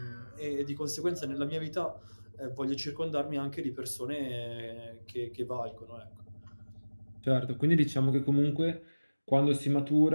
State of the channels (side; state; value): both; inverted; correlation -1.00